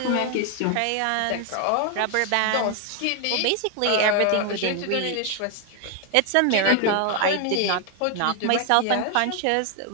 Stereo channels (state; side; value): different; both; correlation 0.01